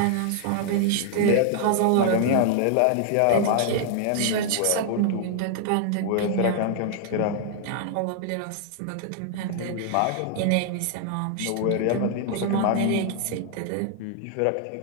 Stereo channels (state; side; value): different; both; correlation 0.00